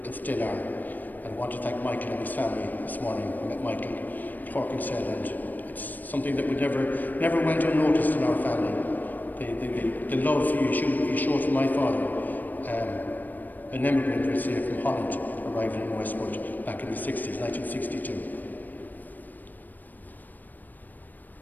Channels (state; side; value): late; right; 0.087 ms